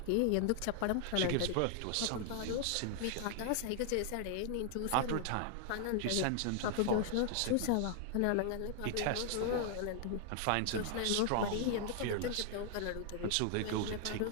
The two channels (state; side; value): different; both; correlation 0.00